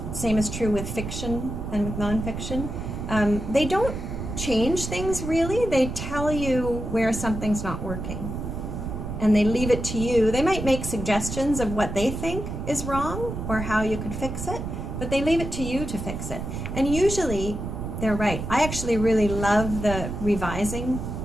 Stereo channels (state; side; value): noise; right; rumble, 6 dB below the sound